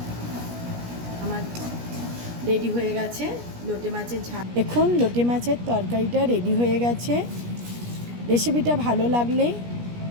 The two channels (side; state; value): left; late; 17 ms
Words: আমার রেডি হয়ে গেছে লোটে মাছের ঝাল। এখন লোটে মাছের তরকারিটা রেডি হয়ে গেছে। রেসিপিটা ভালো লাগলে